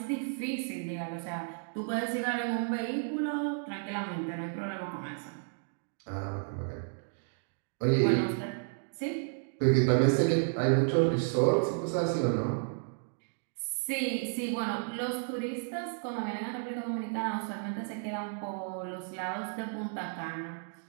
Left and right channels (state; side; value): silent; left; digital silence